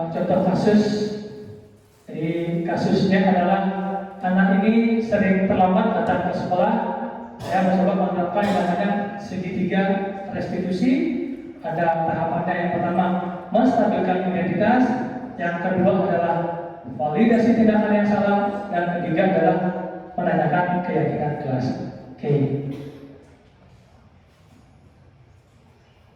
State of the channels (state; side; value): identical; both; correlation 1.00